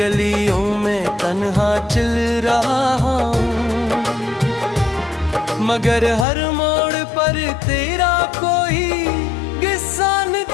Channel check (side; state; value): right; drops out; at 6.2 s